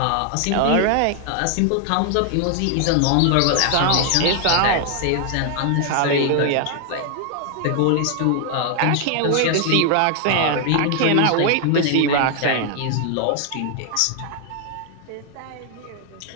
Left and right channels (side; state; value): both; different; correlation 0.00